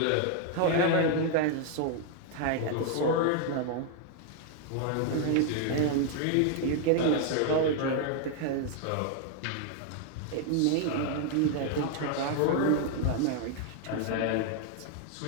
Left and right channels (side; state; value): both; different; correlation 0.00